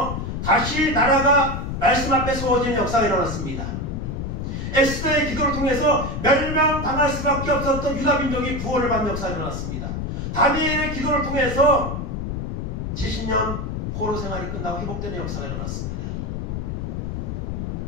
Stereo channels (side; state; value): left; noise; rumble, 4 dB below the sound